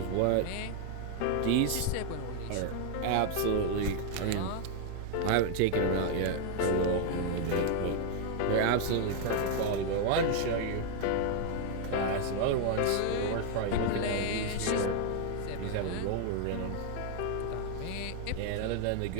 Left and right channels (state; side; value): different; both; correlation 0.00